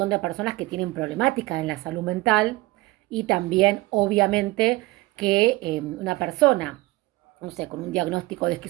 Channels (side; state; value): left; quieter; 20.2 dB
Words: de personas que tienen problemáticas en la salud mental y también, obviamente, que una persona, no sé, con un diagnóstico de